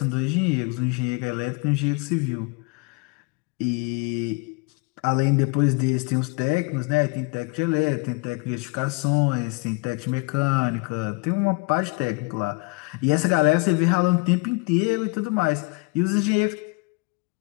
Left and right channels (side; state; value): right; quieter; 28.9 dB